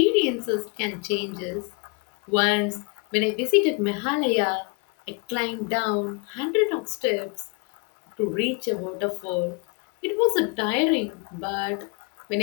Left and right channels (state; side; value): quieter; right; 32.1 dB